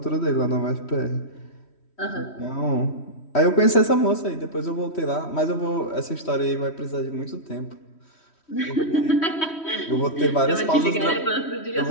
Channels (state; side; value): late; right; 3.1 ms